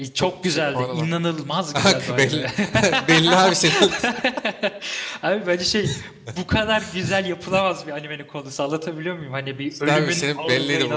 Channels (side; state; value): both; identical; correlation 1.00